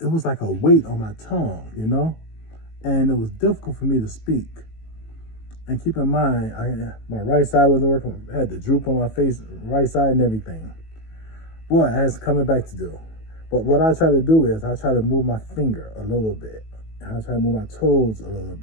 it was like a weight on my tongue, and it was difficult for me to speak. And keep in mind, my right side wasn't working. I had the droop on my face, right side and everything. Boy, I had some coming back to do. But what I try to do is I try to move my finger a little bit. And I try to move my toes a little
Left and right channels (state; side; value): late; right; 18 ms